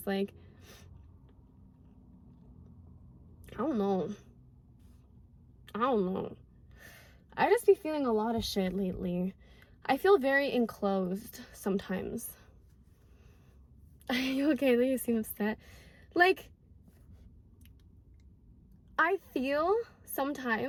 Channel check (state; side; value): identical; both; correlation 1.00